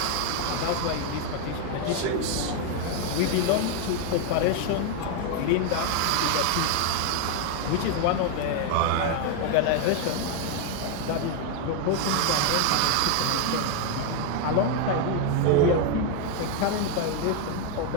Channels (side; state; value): both; different; correlation 0.01